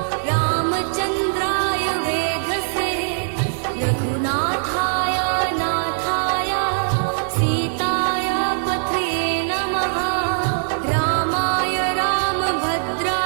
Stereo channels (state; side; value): silent; left; digital silence